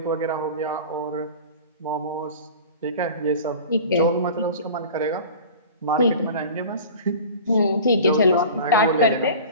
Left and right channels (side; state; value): both; inverted; correlation -0.38